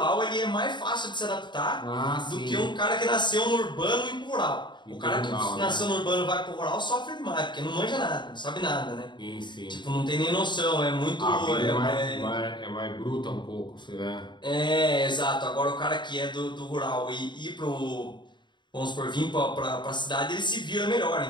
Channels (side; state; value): right; late; 0.22 ms